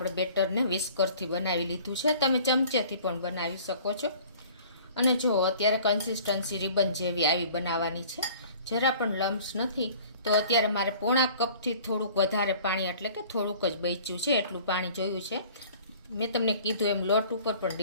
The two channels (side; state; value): both; inverted; correlation -0.49